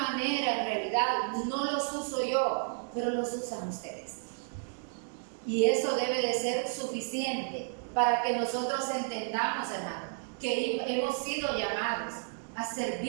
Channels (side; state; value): left; silent; 56 dB below the other